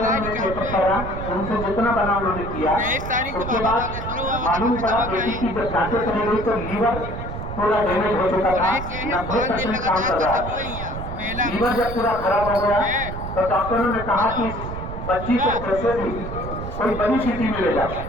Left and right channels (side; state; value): right; noise; rumble, 8 dB below the sound